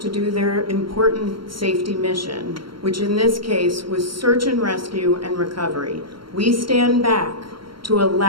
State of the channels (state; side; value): late; left; 0.73 ms